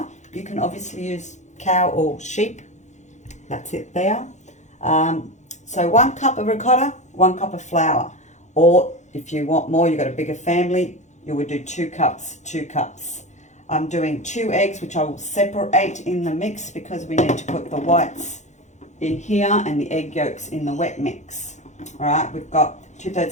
You can obviously use cow or sheep. That's it there. So 1 cup of ricotta, 1 cup of flour. Or if you want more, you've got a bigger family, you would do 2 cups, 2 cups. I'm doing 2 eggs, which I will separate in the mix because we need to put the whites in here and the egg yolks in the wet mix. All right, we've got 2/3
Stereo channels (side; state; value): right; late; 0.34 ms